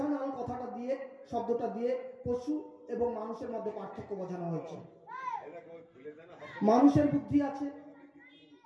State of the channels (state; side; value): identical; both; correlation 1.00